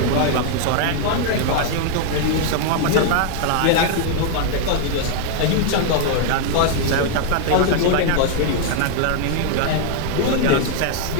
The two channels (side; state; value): both; different; correlation 0.00